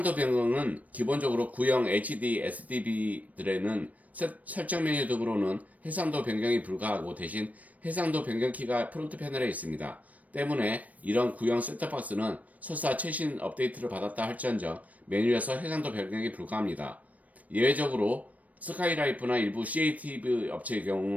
변경은 기본적으로 구형 HD SDV들에는 설정 메뉴 등으로는 해상도 변경이 불가하고 대신 해상도 변경 키가 프론트 패널에 있습니다. 때문에 이런 구형 셋톱박스는 설사 최신 업데이트를 받았다 할지언정 메뉴에서 해상도 변경이 불가합니다. 예외적으로 스카이라이프나 일부 CATV 업체의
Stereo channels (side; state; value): left; late; 0.072 ms